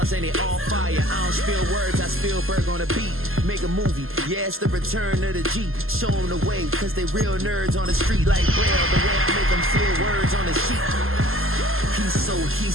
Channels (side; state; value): left; late; 0.61 ms